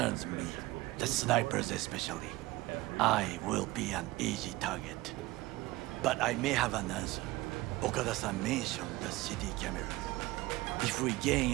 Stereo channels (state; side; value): quieter; left; 19.3 dB